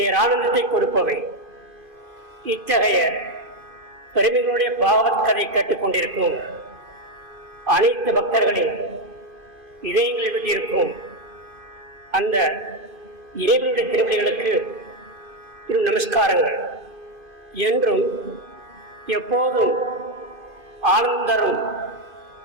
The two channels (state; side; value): late; left; 2.5 ms